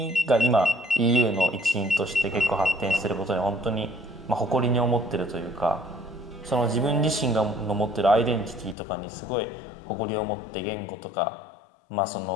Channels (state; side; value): drops out; right; at 8.8 s